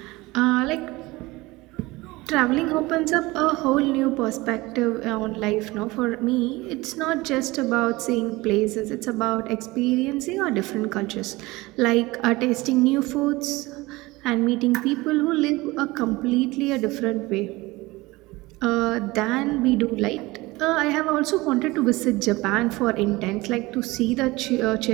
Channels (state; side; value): quieter; left; 21.2 dB